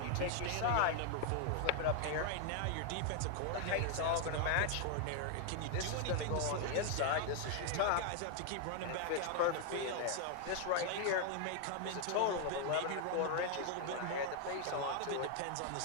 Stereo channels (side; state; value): both; different; correlation 0.00